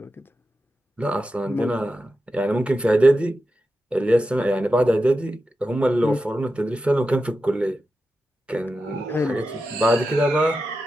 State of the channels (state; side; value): normal; both; correlation 0.90